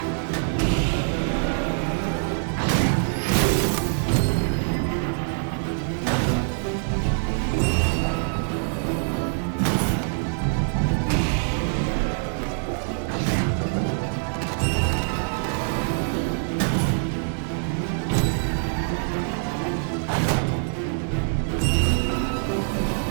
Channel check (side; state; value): left; silent; digital silence